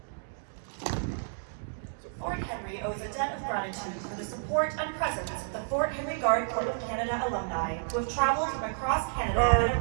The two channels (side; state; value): left; silent; digital silence